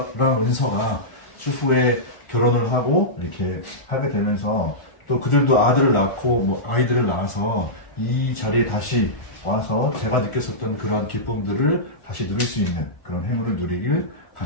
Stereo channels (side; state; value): right; late; 1.5 ms